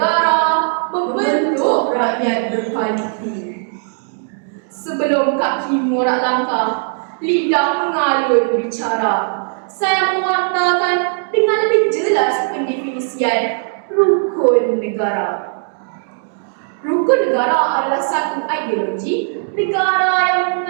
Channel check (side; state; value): left; silent; 68 dB below the other